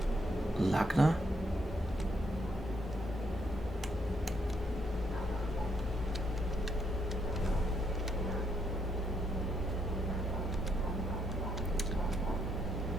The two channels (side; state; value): both; normal; correlation 0.75